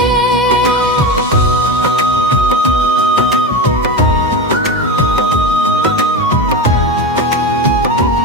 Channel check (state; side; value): normal; both; correlation 0.22